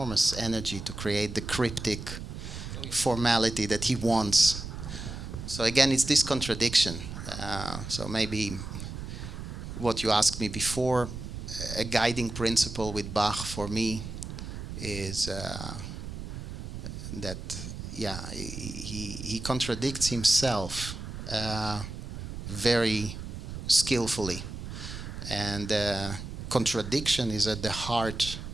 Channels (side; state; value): right; noise; rumble, 8 dB below the sound